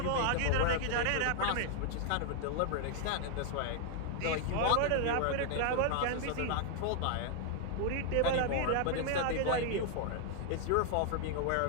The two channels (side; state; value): both; different; correlation 0.00